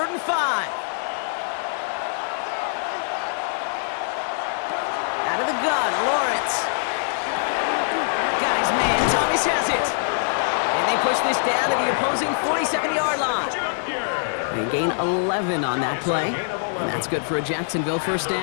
and 5. Out of the gun, Lawrence. Got his man, Thomas has it. And they push this down to the opposing 47-yard line. They gain 11 on that play. And that's good for a Jacksonville first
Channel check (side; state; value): right; silent; 61 dB below the other